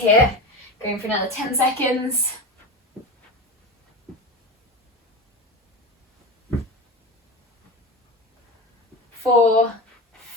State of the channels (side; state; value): both; normal; correlation 0.25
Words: Going for another 10 seconds. 4,